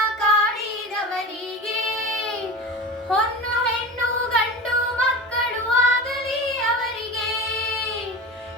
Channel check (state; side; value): normal; both; correlation 0.30